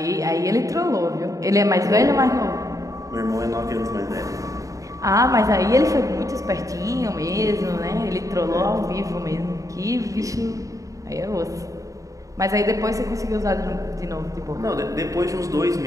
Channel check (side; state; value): left; late; 0.16 ms